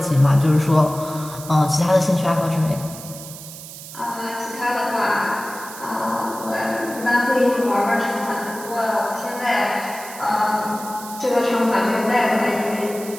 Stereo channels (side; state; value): right; noise; hiss, 14 dB below the sound